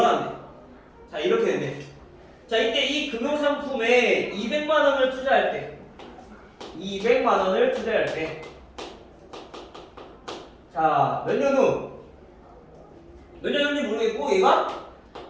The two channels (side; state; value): both; identical; correlation 1.00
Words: 자, 이렇게 되네. 자, 이때 이 금융상품에 200만 원을 투자할 때 200만 원을 투자할 때, 자, 몇 년 후? 몇 년 후인지 모르겠고 얘가